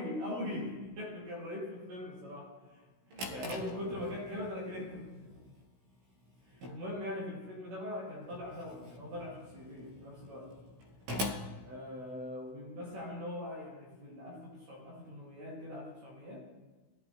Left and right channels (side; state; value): left; late; 16 ms